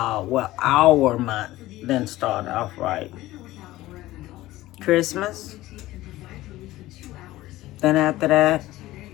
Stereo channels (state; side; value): quieter; right; 16.8 dB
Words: Our month didn't start off right. Christmas, then after that,